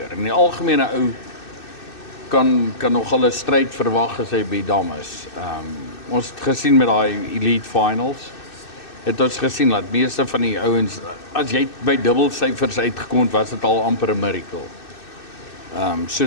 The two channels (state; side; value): late; right; 2.6 ms